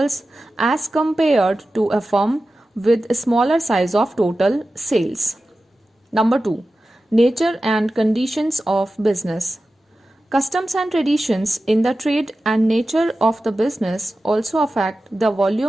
as compared to a firm with a smaller size of total sales. Number 2. Nature and conditions of business. Customs and traditions in the trade and nature of the business also affect the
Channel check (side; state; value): both; normal; correlation 0.94